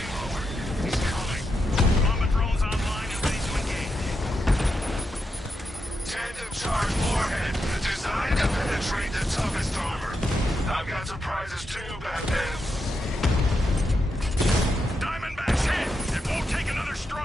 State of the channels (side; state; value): both; normal; correlation 0.85